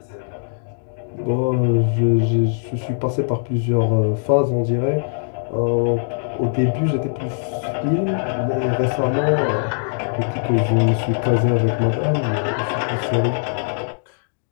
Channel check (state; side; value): silent; right; digital silence